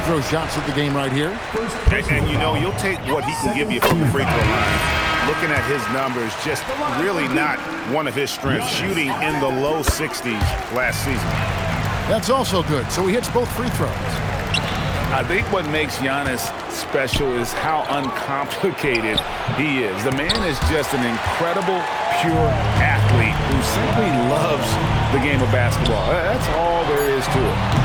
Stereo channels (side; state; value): both; identical; correlation 1.00